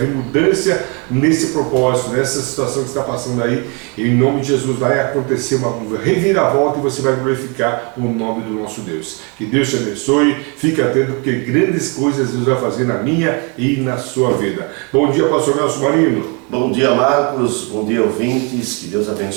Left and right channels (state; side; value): quieter; left; 33.4 dB